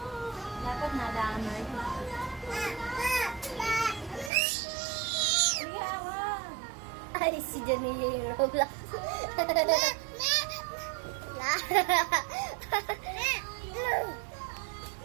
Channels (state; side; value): drops out; left; at 4.3 s